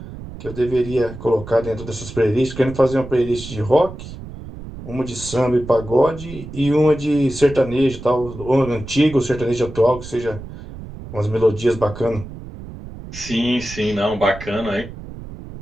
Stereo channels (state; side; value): noise; right; rumble, 13 dB below the sound